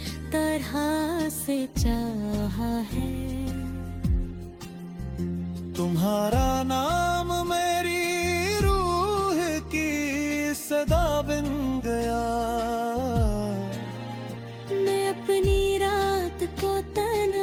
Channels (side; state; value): both; identical; correlation 1.00